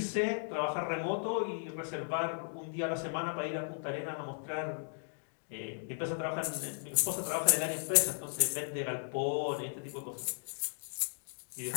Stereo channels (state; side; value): silent; right; digital silence